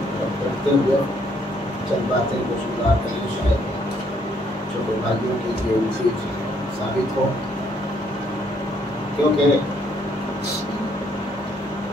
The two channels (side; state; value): both; normal; correlation 0.68